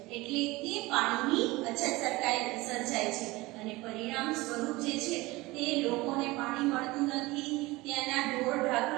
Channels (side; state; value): left; quieter; 21.2 dB